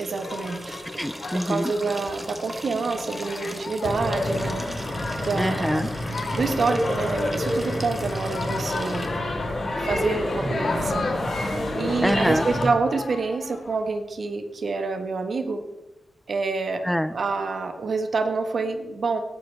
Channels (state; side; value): normal; both; correlation 0.90